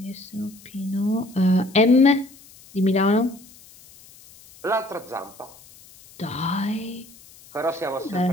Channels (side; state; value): left; noise; hiss, 23 dB below the sound